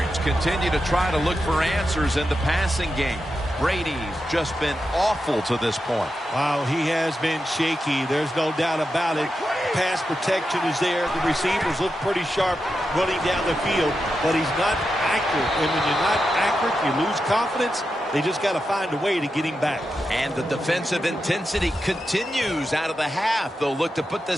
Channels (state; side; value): normal; both; correlation 0.88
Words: continue to try to look for answers in the passing game. Brady's just been awful to this point. Wow, he has been shaky. There's no doubt about it. Pass protection is there. The receivers look pretty sharp running down the field, but he's not accurate. And when you're not accurate, you lose confidence. They just got to find a way to get him back. And the defensive intensity continues out of the half. They'll look to put